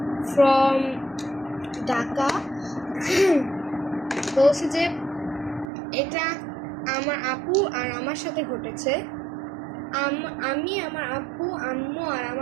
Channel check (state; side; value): drops out; left; at 5.7 s